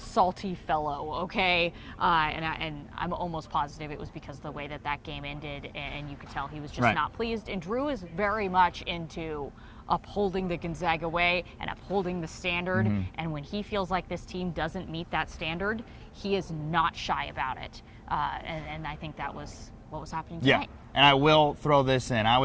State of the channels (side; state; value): both; identical; correlation 1.00